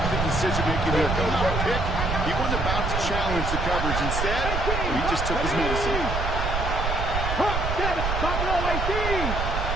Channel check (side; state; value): right; noise; rumble, 2 dB below the sound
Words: decision-making there. Coming off a pick, he wasn't about to challenge the coverage. Instead, he just took his medicine. Hawk 7, Buffalo 18.